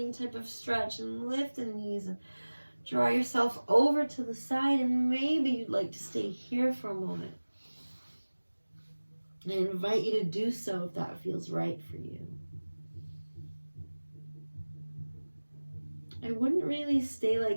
type of stretch, and lift the knees and draw yourself over to the side, and maybe you'd like to stay here for a moment. And I invite you to do so if that feels right for you. I wouldn't really stay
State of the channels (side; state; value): both; inverted; correlation -1.00